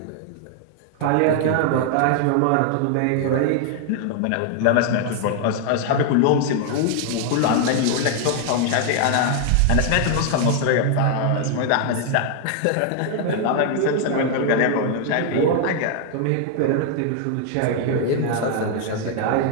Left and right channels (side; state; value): both; different; correlation 0.00